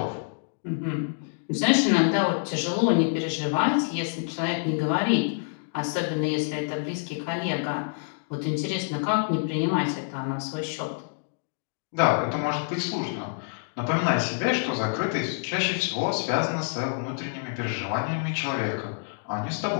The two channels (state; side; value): silent; right; digital silence